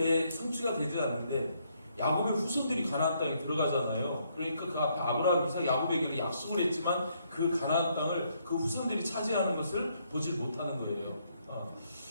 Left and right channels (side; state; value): both; inverted; correlation -0.73